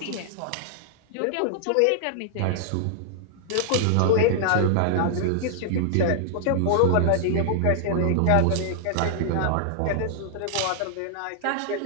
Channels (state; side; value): different; both; correlation -0.01